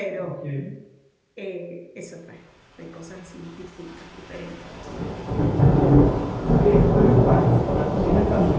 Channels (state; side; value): identical; both; correlation 1.00